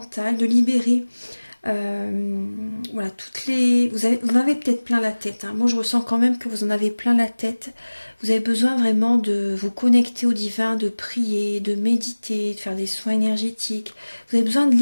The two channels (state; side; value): inverted; both; correlation -1.00